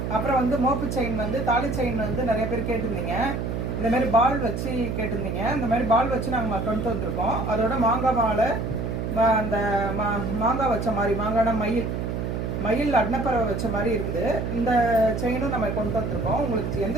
அப்புறம் வந்து மோப்பு செயின் வந்து தாலி செயின் வந்து நிறைய பேர் கேட்டிருந்தீங்க. இந்தமாரி பால் வச்சு கேட்டிருந்தீங்க. இந்த மாதிரி பால் வச்சு நாங்கள் கொண்டு வந்திருக்கோம். அதோட மாங்காய் மாலை, அந்த மாங்காய் வச்ச மாதிரி மாங்கான மயில் அன்னப்பறவை வச்ச மாதிரி இருக்குது. இந்த செயினும் நம்ம கொண்டு வந்திருக்கோம். உங்களுக்கு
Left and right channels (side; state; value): right; noise; hum, 2 dB below the sound